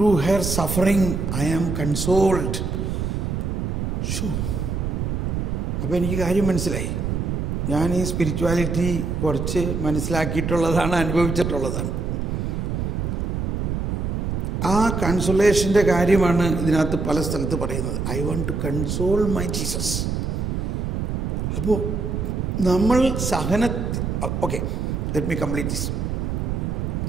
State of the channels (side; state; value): right; noise; rumble, 1 dB below the sound